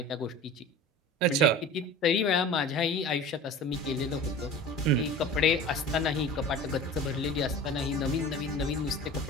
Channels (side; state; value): both; normal; correlation 0.37